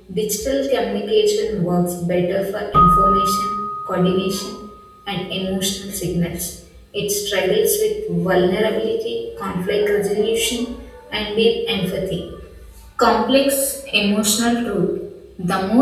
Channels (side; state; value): both; identical; correlation 1.00